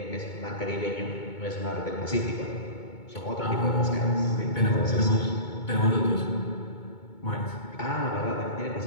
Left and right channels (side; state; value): right; late; 2.2 ms